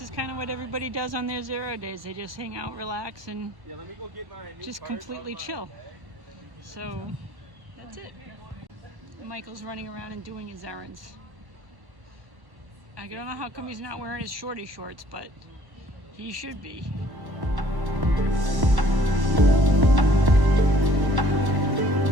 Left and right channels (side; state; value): left; late; 1.1 ms